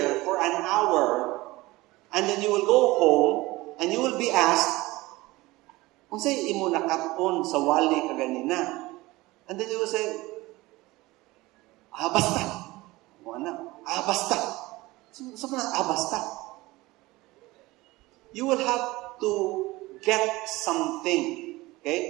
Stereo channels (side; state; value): left; quieter; 20.2 dB